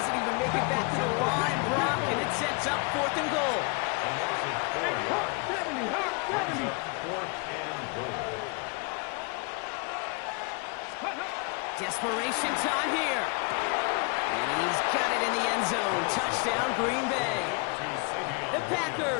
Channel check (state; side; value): quieter; right; 32.3 dB